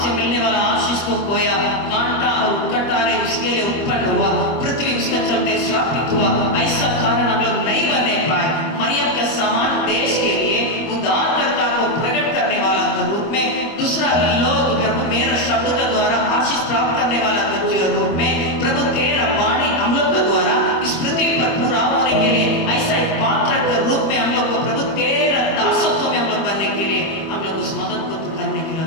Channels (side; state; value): right; late; 25 ms